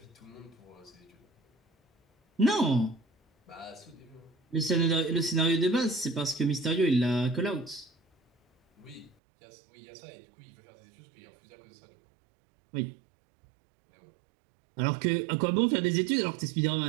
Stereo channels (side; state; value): left; drops out; at 9.2 s